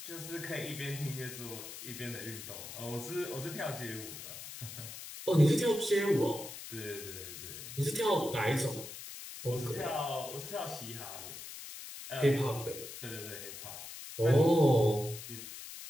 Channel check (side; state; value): left; noise; hiss, 11 dB below the sound